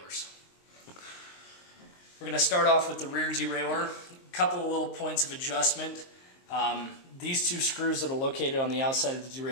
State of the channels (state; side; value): late; right; 23 ms